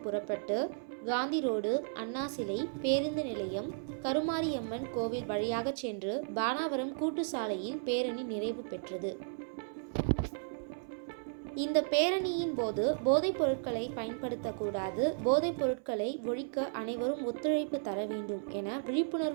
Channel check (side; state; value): left; silent; 55 dB below the other